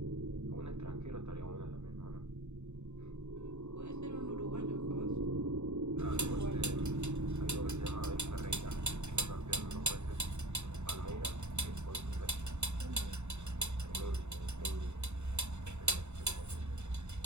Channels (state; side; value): late; left; 0.82 ms